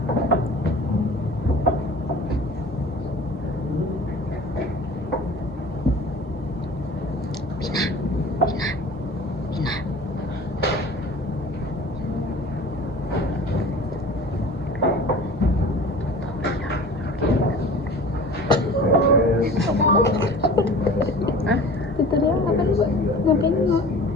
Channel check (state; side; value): normal; both; correlation 0.41